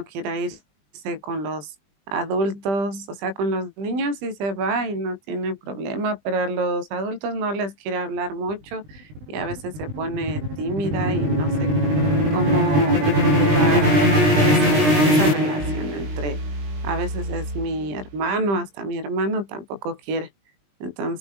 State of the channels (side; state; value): left; late; 20 ms